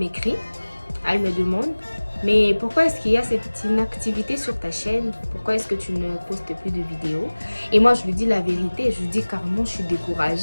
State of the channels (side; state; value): both; inverted; correlation -1.00